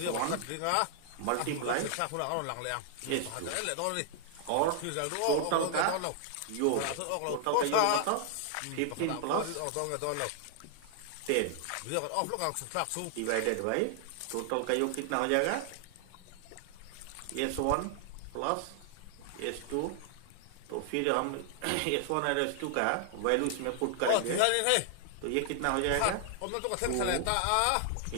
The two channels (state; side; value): different; both; correlation 0.00